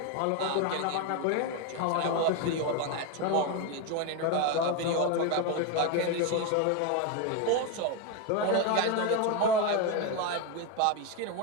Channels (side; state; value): both; different; correlation 0.03